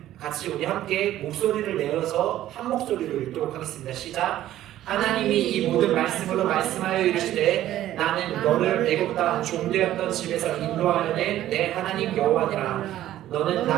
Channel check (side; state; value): left; quieter; 13.3 dB